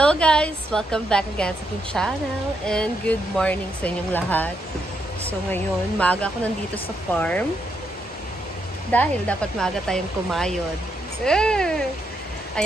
guys! Welcome back again sa aking channel and good morning sa inyong lahat. So ngayon, maaga ako nandito sa farm dahil dapat maaga tayong kumayod.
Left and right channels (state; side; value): normal; both; correlation 0.79